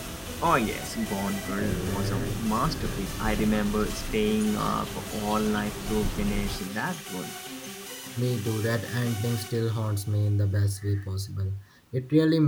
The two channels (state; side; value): identical; both; correlation 1.00